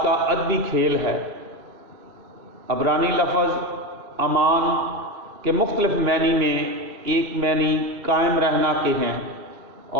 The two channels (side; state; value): left; late; 2.8 ms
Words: کا ادبی کھیل ہے۔ عبرانی لفظ امان کے مختلف معنی میں ایک معنی قائم رہنا کے ہیں،